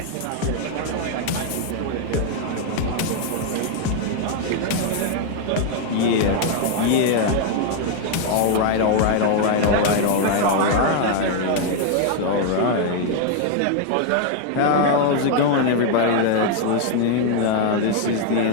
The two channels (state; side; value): different; both; correlation 0.00